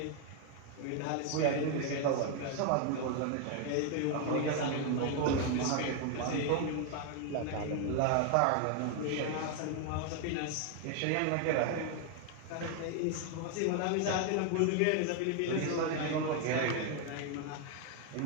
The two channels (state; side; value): different; both; correlation 0.01